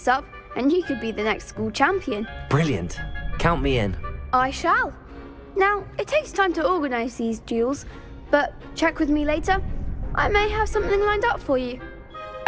up and you could be the next school champion. Brilliant. Count me in. I shall. Now, it takes time to organise these duels, but check with me later. I may have something lined up for you.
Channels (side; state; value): both; identical; correlation 1.00